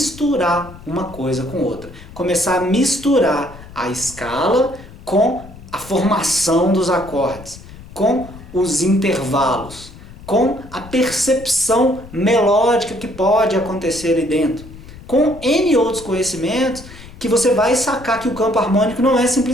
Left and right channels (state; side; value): noise; left; rumble, 17 dB below the sound